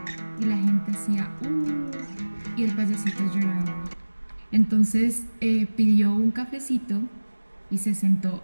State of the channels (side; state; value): both; inverted; correlation -1.00